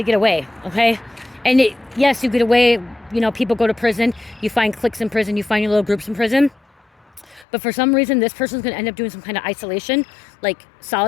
get away, okay? And yes, you get away, you know, people go to prison, you find cliques in prison, you find your little groups in prison. But for some reason, this person's going to end up doing some kind of isolation, like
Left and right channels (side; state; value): right; drops out; at 7.5 s